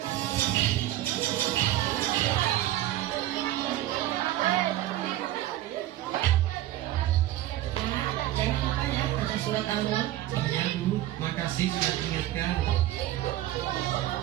Surat Al-Mulk. Ya Bu, makasih sudah diingatkan.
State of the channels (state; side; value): quieter; left; 14.3 dB